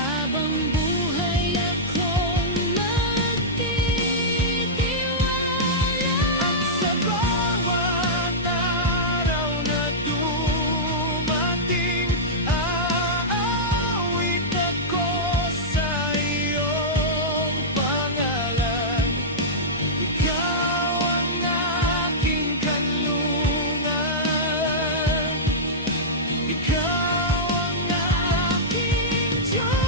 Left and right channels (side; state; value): both; normal; correlation -0.12